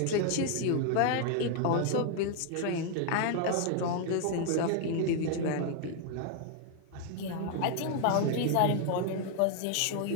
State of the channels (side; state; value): both; different; correlation 0.00